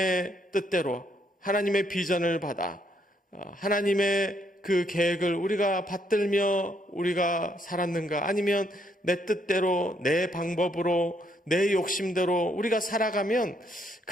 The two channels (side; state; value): both; normal; correlation 0.72